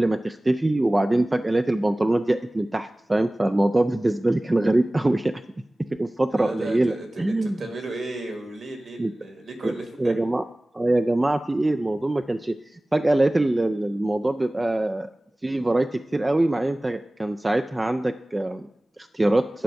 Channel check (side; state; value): both; normal; correlation 0.98